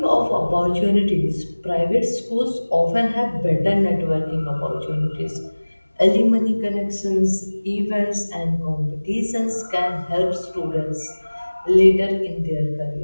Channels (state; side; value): inverted; both; correlation -1.00